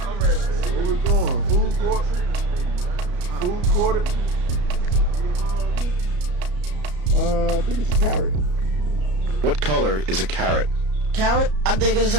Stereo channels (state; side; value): late; left; 33 ms